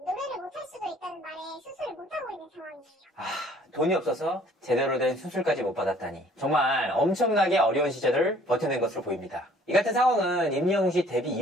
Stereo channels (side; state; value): both; normal; correlation 0.56